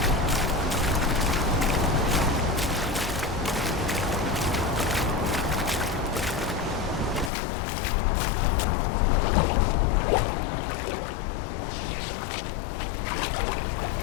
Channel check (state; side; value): drops out; right; at 7.3 s